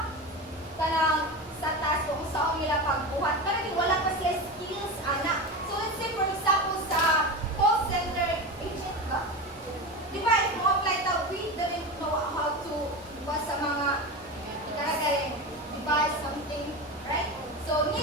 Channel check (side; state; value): both; normal; correlation 0.23